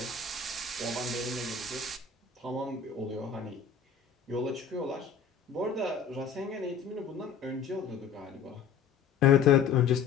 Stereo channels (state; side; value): quieter; right; 6.4 dB